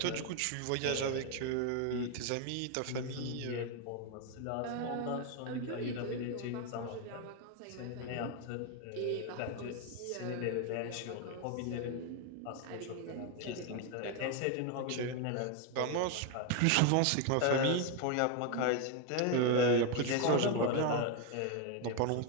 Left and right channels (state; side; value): different; both; correlation 0.01